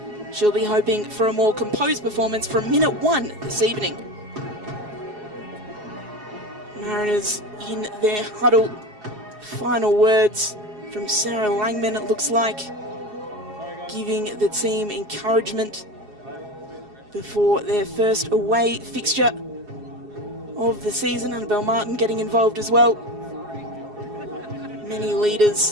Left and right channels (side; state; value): left; late; 4.8 ms